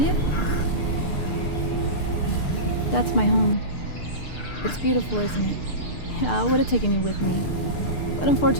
it? That's my home. It's beautiful, isn't it? Yeah, I would have taken you with me. But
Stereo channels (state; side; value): late; right; 6.7 ms